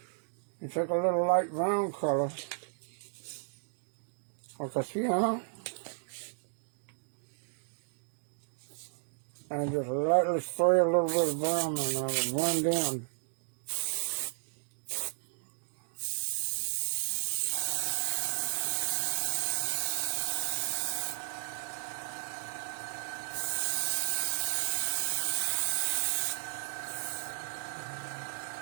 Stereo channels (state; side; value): silent; left; digital silence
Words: You take a little light brown color, like a sienna, and just lightly spray a little bit of brown in there to blend in.